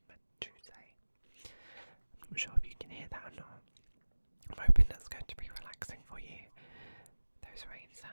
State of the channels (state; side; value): inverted; both; correlation -1.00